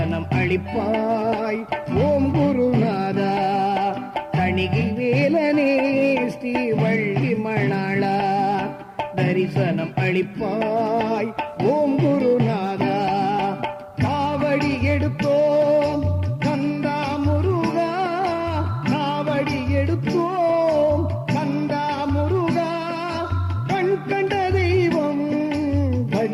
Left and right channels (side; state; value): both; identical; correlation 1.00